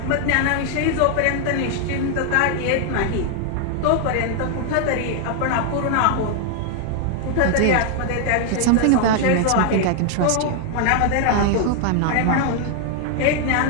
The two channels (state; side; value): different; both; correlation 0.00